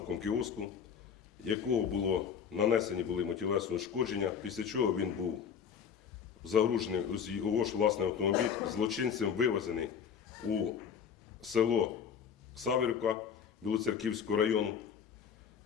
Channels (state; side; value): quieter; right; 7.3 dB